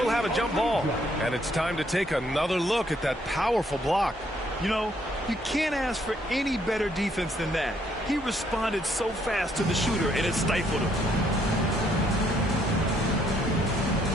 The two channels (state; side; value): normal; both; correlation 0.69